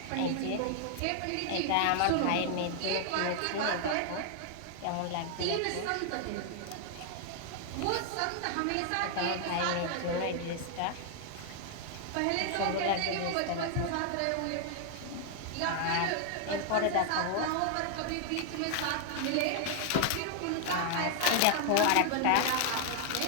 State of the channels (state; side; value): different; both; correlation 0.00